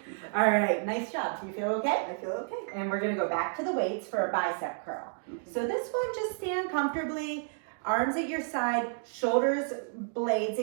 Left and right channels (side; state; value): left; silent; 57 dB below the other